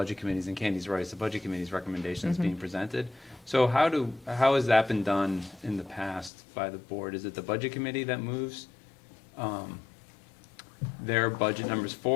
committees, and Candy's right, it's the budget committee's recommendation that's being presented. So how has that been done in the past by the board? Is it the budget committee that moves their budget numbers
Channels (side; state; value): right; drops out; at 6.3 s